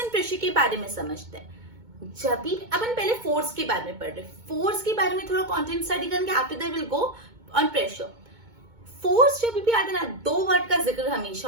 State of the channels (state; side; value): late; left; 2.2 ms